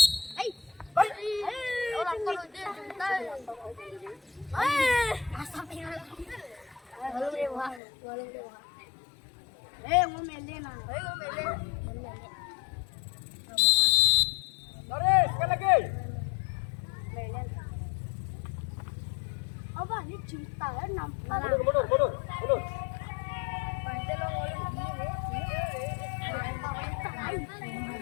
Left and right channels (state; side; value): drops out; right; at 7.8 s